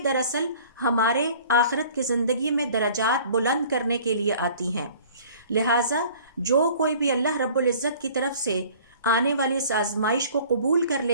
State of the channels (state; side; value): inverted; both; correlation -0.50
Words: دراصل ہمارے آخرت کی زندگی میں درجات بلند کرنے کے لیے آتی ہیں۔ لہٰذا جو کوئی بھی اللہ رب العزت کی طرف سے آنے والی اس آزمائش کو قبول کر